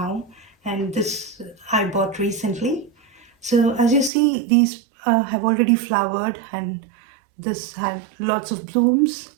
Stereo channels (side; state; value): left; drops out; at 4.1 s